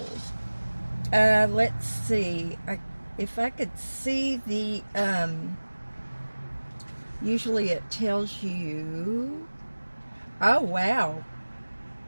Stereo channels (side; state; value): both; inverted; correlation -1.00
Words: Let's see. If I could see the, usually it tells you, oh, wow.